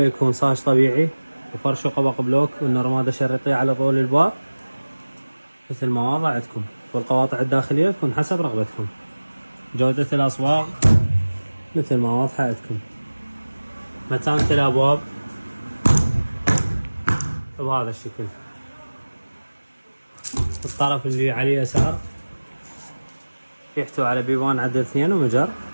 يكون صاج طبيعي وفرش وقبق بلوك والنرماده شريطيه على طول الباب مثل ما واضح عندكم، والقواطع الداخليه تكون حسب رغبتكم. جودة الاصواغ مثل ما واضحه عندكم. متانة الابواب بهذا الشكل. الطرف اللي على اليسار يحتوي على بيبان عدد 2 ومجر.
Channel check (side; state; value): both; inverted; correlation -1.00